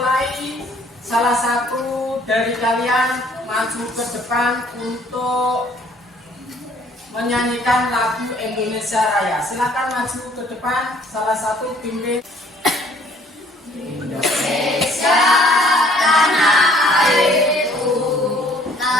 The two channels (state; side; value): normal; both; correlation 0.59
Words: salah satu dari kalian maju ke depan untuk menyanyikan lagu Indonesia Raya. Silakan maju ke depan, salah satu pimpin. Indonesia tanah air.